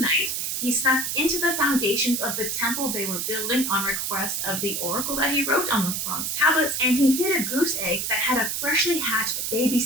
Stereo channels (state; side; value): noise; right; hiss, 1 dB below the sound